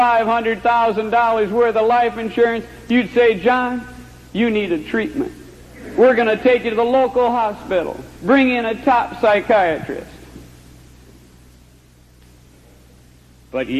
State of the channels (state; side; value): identical; both; correlation 1.00